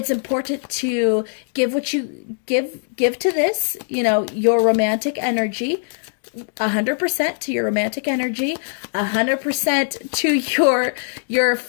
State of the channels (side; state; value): right; silent; digital silence